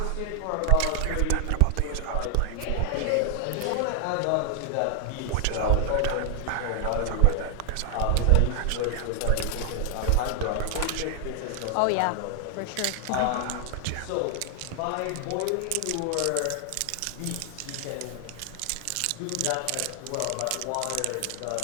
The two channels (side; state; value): both; different; correlation 0.00